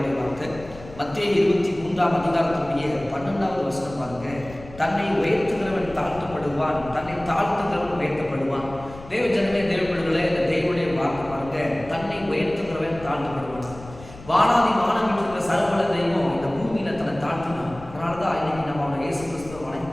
வார்த்தை மத்தேயு 23ஆம் அதிகாரத்துடைய 12வது வசனம் பாருங்க. தன்னை உயர்த்துகிறவன் தாழ்த்தப்படுவான், தன்னை தாழ்த்துகிறவன் உயர்த்தப்படுவான். தேவ ஜனமே, தேவ பிள்ளைகளே, இந்த தேவனுடைய வார்த்தை பாருங்க. தன்னை உயர்த்துகிறவன் தாழ்த்தப்படுவான். வானாதி வானம் இருக்கிற சர்வல தெய்வம் இந்த பூமியில தன்னை தாழ்த்தினான். அதனாலதான் இன்னைக்கு நம்ம அவனை இயேசு கிறிஸ்துவை வணங்கி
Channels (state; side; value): noise; left; rumble, 17 dB below the sound